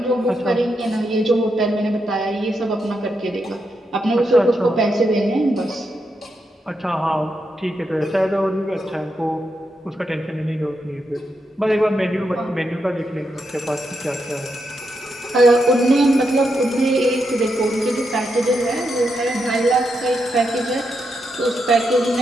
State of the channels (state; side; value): normal; both; correlation 0.83